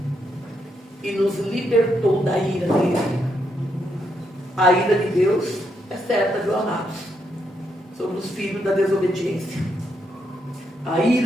e nos libertou da ira dele. A ira de Deus é certa, viu, amados? Sobre os filhos da desobediência. A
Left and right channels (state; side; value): normal; both; correlation 0.78